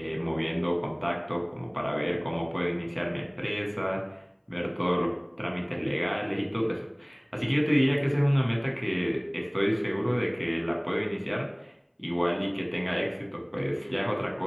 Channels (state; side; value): identical; both; correlation 1.00